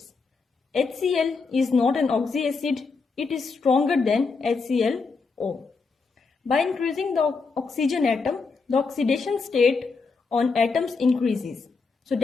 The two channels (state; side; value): quieter; right; 4.6 dB